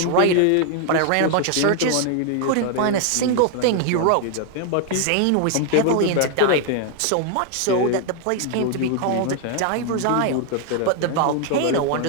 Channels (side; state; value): both; different; correlation 0.00